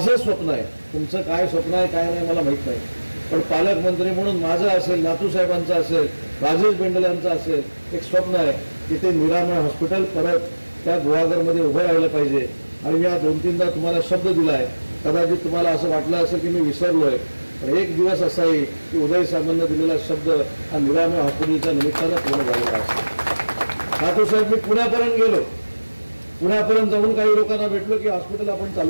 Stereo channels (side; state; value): both; inverted; correlation -1.00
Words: स्वप्न आहे, तुमचं काय स्वप्न आहे काय नाही मला माहीत नाही, पण पालकमंत्री म्हणून माझं असेल, नातूसाहेबांचं असेल, राजेश बेंडलांचं असेल, एक स्वप्न आहे की ते निरामय हॉस्पिटल परत त्या गुहागरमध्ये उभं राहिलं पाहिजे. आणि मी 2-3दा तुम्हाला शब्द दिला आहे, कदाचित तुम्हाला असं वाटलं असेल की मी विसरलोय, पण एक दिवस असा येईल की उदय साहेबांना दिलेला शब्द हा निरामय हॉस्पिटलच्या निमित्तानं पूर्ण झालेला असेल. नातूसाहेब मी पुण्यापर्यंत गेलो, पुण्यापर्यंत जाऊन काही लोकांना भेटलो की हॉस्पिटल आपण